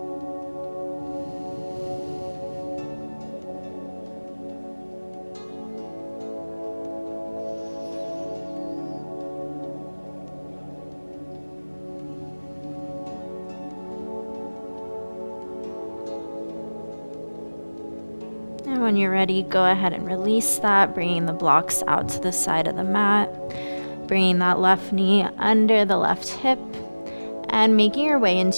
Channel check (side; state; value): both; inverted; correlation -1.00